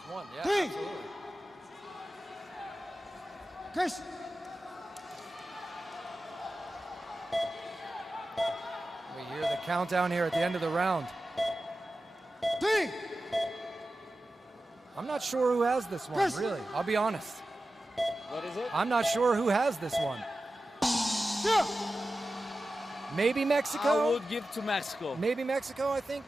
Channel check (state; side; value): normal; both; correlation 0.94